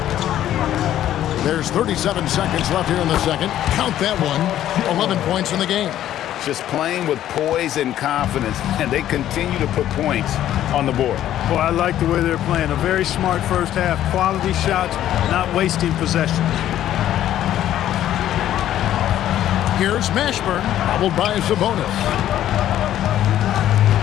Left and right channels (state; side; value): quieter; right; 12.1 dB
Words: There's 37 seconds left here in the second. Count that one. 11 points in the game. Just playing with poise and confidence, and they continue to put points on the board. Boy, I like the way they're playing. A very smart first half. Quality shots, not wasting possession. Here's Mashburn, followed by Sabonis.